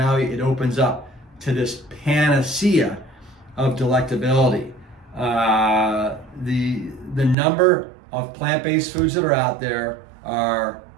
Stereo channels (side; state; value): left; drops out; at 7.4 s